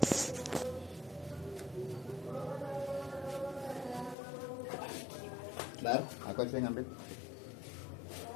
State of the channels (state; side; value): drops out; right; at 4.2 s